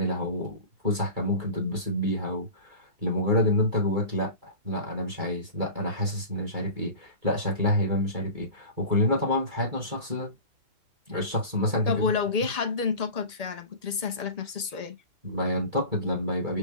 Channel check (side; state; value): left; late; 1.8 ms